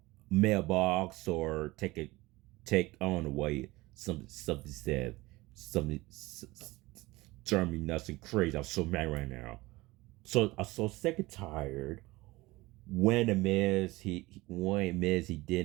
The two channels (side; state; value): left; quieter; 20.7 dB